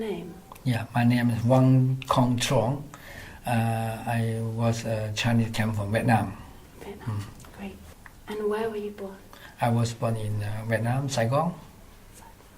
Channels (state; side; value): identical; both; correlation 1.00